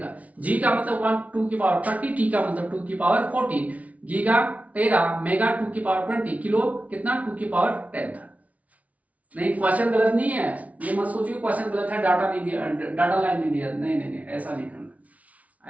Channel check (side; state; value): left; late; 0.069 ms